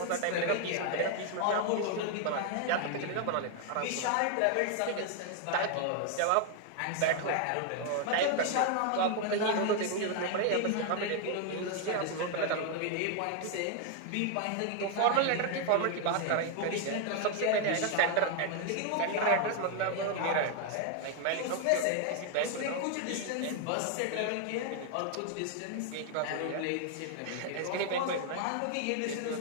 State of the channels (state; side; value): different; both; correlation 0.00